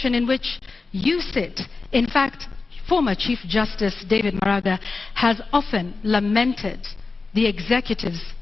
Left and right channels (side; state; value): right; quieter; 4.1 dB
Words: in which you sit. In fact, former Chief Justice David Maraga has often lamented the executive's